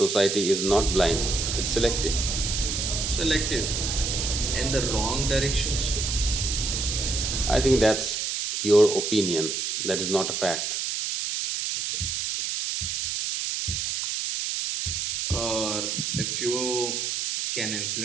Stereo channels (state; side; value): noise; right; hiss, 1 dB below the sound